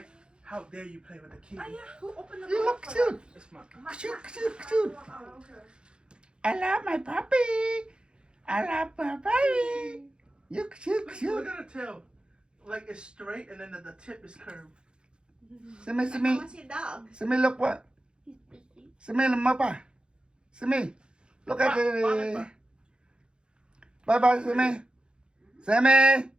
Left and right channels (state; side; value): late; left; 0.052 ms